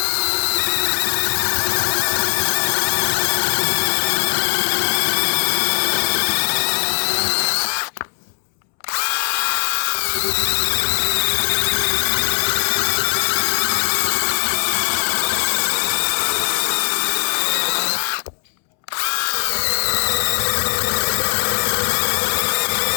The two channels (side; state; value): right; silent; 66 dB below the other